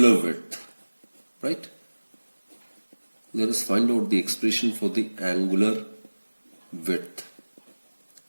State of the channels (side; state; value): both; inverted; correlation -1.00